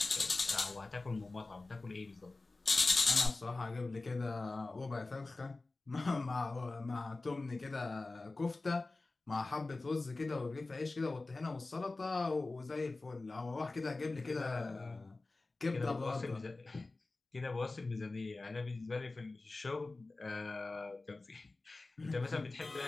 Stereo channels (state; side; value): quieter; right; 3.3 dB